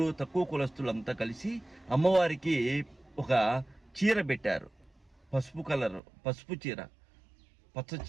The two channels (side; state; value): left; drops out; at 6.0 s